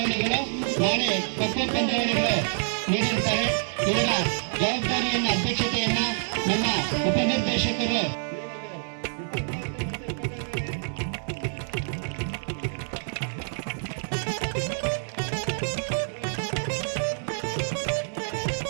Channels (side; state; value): left; silent; digital silence